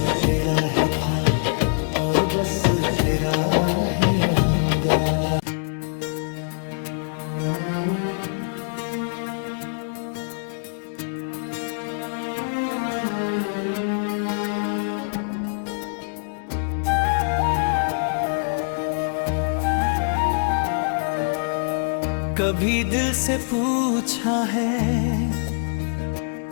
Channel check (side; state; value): right; silent; digital silence